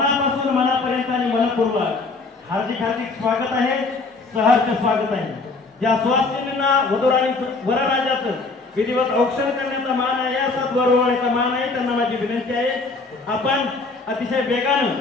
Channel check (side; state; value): right; quieter; 3.7 dB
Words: मनापर्यंत आणि मनपूर्वक हार्दिक हार्दिक स्वागत आहे, सहर्ष स्वागत आहे। ज्या सुवासिनींना वधू आणि वरराजाचं विधिवत औक्षण करण्याचा मान आहे, असाच वरवळण्याचा मान आहे, त्यांना माझी विनंती आहे आपण अतिशय वेगानं